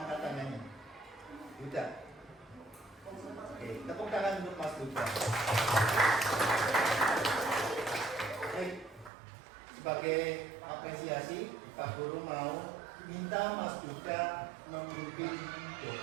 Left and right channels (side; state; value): left; drops out; at 9.1 s